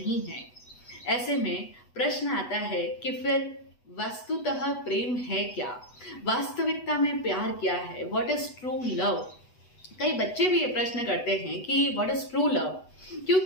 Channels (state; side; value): late; right; 8.1 ms